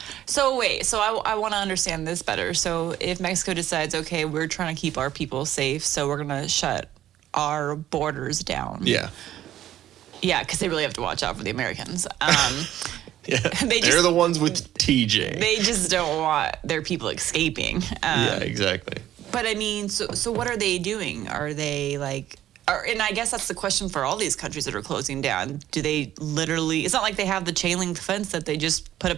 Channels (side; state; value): left; quieter; 12.5 dB